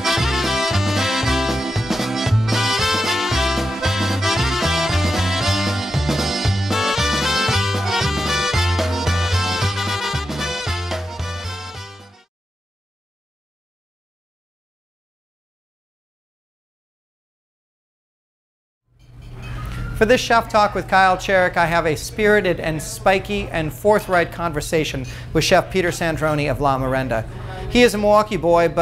For this Chef Talk with Kyle Cherek, I have a spirited and spiky and forthright conversation with Chef Peter Sandroni of La Merenda. He is a Milwaukee boy,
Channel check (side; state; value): both; normal; correlation 0.95